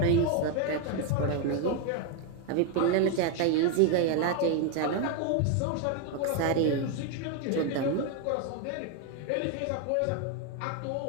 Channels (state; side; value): different; both; correlation 0.01